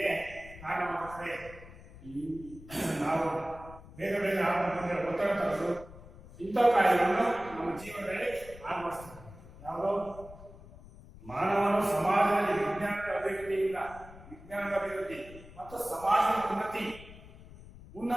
ಕಾರಣವಾಗುತ್ತದೆ. ನಾವು ಬೇಗ ಆಗುವಂತೆ ಒತ್ತಡ ತರೋದು ಇಂಥ ಕಾಯಿಲೆಗಳನ್ನು ನಮ್ಮ ಜೀವನದಲ್ಲಿ ಅಳವಡಿಸ್ತದೆ. ಯಾವುದೋ ಮಾನವನು ಸಮಾಜದಲ್ಲಿ ವಿಜ್ಞಾನದ ಅಭಿವೃದ್ಧಿ ಮತ್ತು ಸಮಾಜದ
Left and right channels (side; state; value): left; noise; rumble, 18 dB below the sound